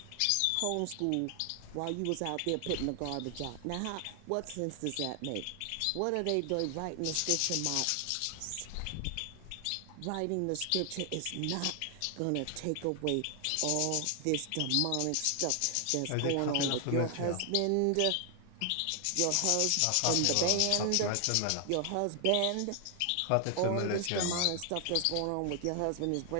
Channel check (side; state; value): both; different; correlation 0.00